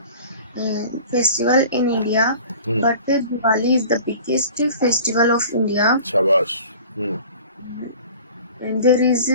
festival in India, Hmm. but Diwali is the biggest festival of India. Shabash. Hmm. And there is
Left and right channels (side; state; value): both; inverted; correlation -0.43